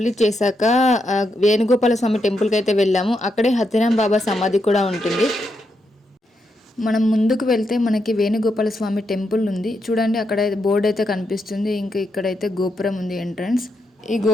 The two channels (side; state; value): both; normal; correlation 0.82